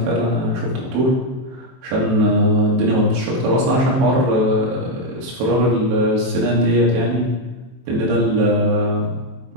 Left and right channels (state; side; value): late; left; 23 ms